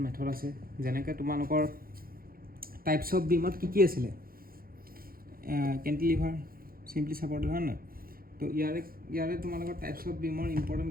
মেথড আছে যেনেকৈ তোমালোকৰ টাইপছ অফ বিমত কি আছিলে কেণ্টিলিভাৰ চিম্পলি ছাপৰ্টেড হয় নহয় তো ইয়াৰে তোমালোকৰ টাইপছ অফ বিমৰ ইম্পৰ্টেণ্ট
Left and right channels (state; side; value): late; left; 0.42 ms